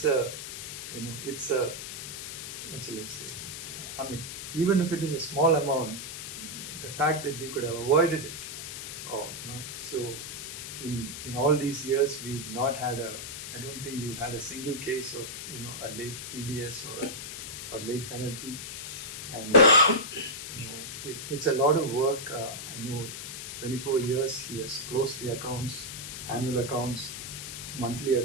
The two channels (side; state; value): left; noise; hiss, 8 dB below the sound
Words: a, what shall I say? Even if it is a small amount, the fact that we could have avoided it, so in all these years, we've not had I don't think we've had a single case of, a late TDS or late penalty. And, it's a lot of work. I know 24 years he has closed the accounts, annual accounts, monthly